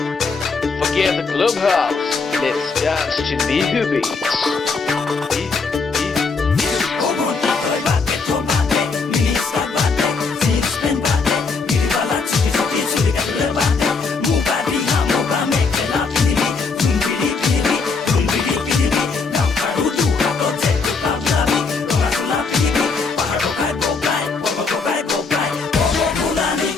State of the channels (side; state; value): right; quieter; 4.6 dB